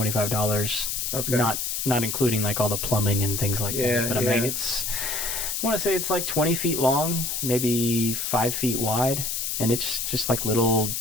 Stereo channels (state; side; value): noise; left; hiss, 2 dB below the sound